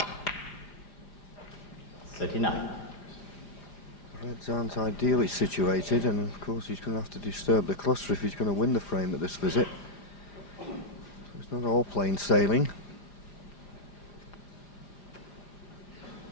39. Reds aren't ideally situated, and of course he's going to have to disturb the cluster if he's going to win the frame at this visit. So it's not all plain sailing.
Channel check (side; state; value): right; late; 4.9 ms